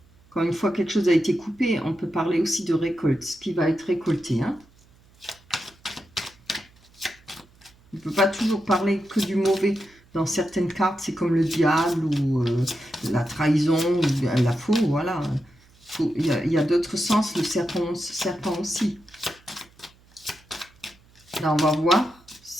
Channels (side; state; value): right; noise; hum, 29 dB below the sound